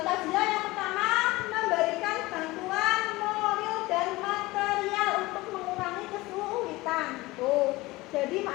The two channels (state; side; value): quieter; right; 20.5 dB